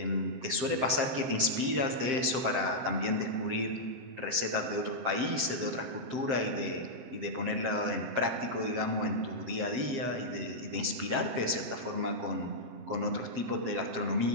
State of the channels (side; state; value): left; late; 7.6 ms